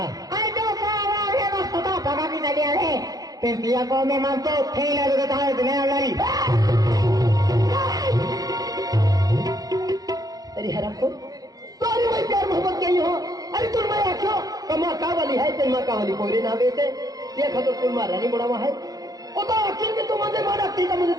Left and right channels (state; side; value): late; left; 0.18 ms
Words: तो आवाज है बस पता पका की चली है फिर पिया को मैं मान तो थैला देता है दुनिया वाली। अरे हराम को तो अरे मैं प्यार मोहब्बत के ही हो। अरे तुम मैं आखो कमा का वाली है तेल माँ का वाली कोई ना बेटे देखा तो तुम रानी बुढ़ावा है वो तो आखिर में तुम मुझे मारा ठीक है मुझे